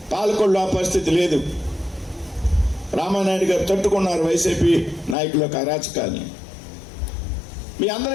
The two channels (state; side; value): drops out; right; at 5.2 s